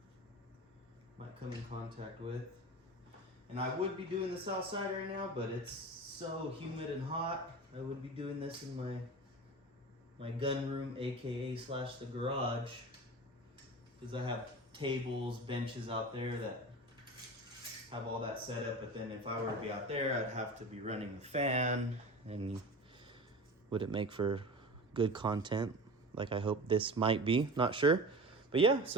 might come in contact with. And I would be doing this outside right now, but it's so humid and hot. I would be doing this in my gun room, aka / the garage, because I have tables, benches out there that have all that set up. But then if I were to be out there, I'd have to be running the fan, and would it make for good content like I hope this might be? Not sure. But yeah,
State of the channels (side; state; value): both; normal; correlation 0.33